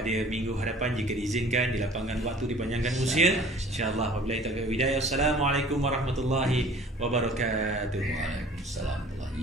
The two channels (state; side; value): normal; both; correlation 0.49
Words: minggu hadapan jika diizinkan, dilapangkan waktu, dipanjangkan usia. Insya-Allah, wabillahi taufik wal hidayah. Assalamualaikum warahmatullahi wabarakatuh. Waalaikumsalam warahmatullahi,